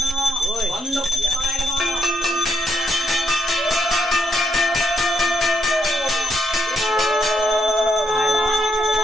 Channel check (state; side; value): normal; both; correlation 0.77